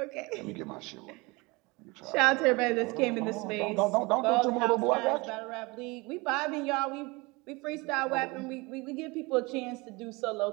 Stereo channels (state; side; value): quieter; left; 25.1 dB